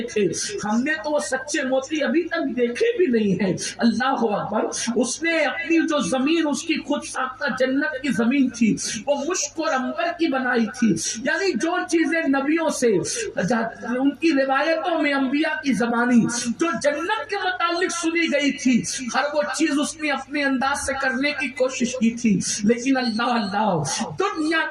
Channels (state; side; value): identical; both; correlation 1.00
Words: تھے. ہم نے تو وہ سچے موتی ابھی تک دیکھے بھی نہیں ہیں. اللہ اکبر. اس نے اپنی جو زمین اس کی خود ساختہ جنت کی زمین تھی وہ مشک اور عنبر کی بنائی تھی. یعنی جو چیزیں نبیوں سے ان کی روایتوں میں انبیاء کی زبانی جو جنت کے متعلق سنی گئی تھی ہر وہ چیز اس نے اپنے انداز سے کرنے کی کوشش کی تھی. لیکن اللہ دنیا